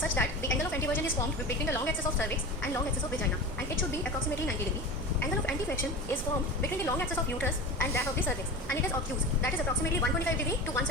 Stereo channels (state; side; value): normal; both; correlation 0.30